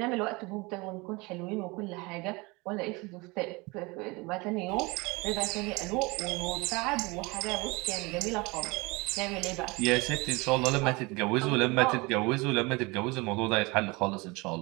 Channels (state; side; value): quieter; left; 25.3 dB